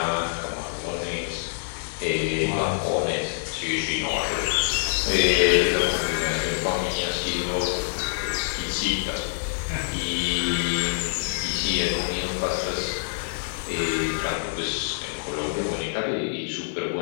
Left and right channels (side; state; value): right; silent; digital silence